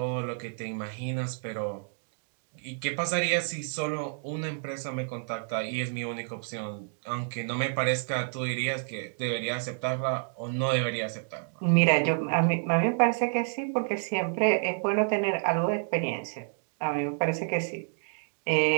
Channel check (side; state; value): left; silent; digital silence